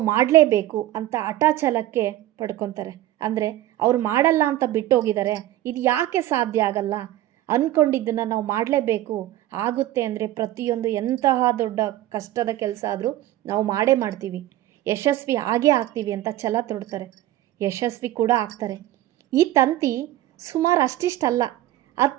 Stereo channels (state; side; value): quieter; left; 14.5 dB